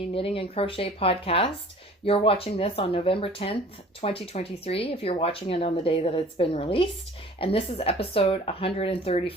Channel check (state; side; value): normal; both; correlation 0.48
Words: Knitting and Crochet podcast. You're watching this on November 10th, 2023, if you're watching it on the day that it's been released. And this is episode